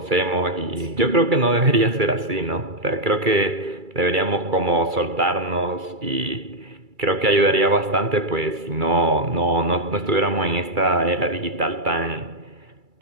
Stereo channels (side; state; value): left; late; 2.3 ms